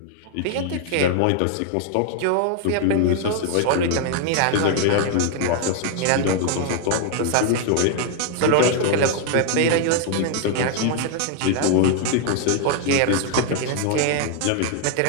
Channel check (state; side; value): different; both; correlation 0.00